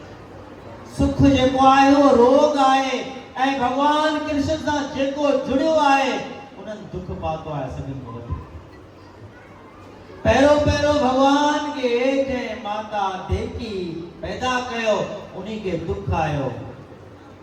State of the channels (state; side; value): identical; both; correlation 1.00